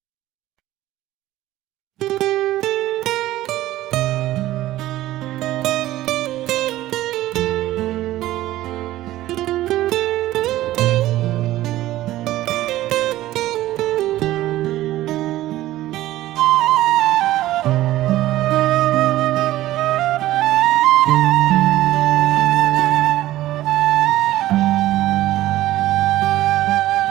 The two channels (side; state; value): left; quieter; 15.3 dB